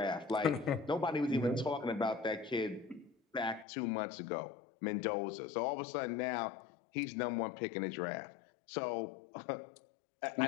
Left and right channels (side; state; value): right; drops out; at 3.7 s